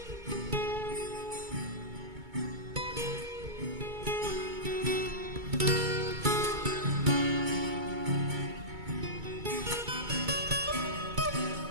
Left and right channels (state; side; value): late; left; 2.2 ms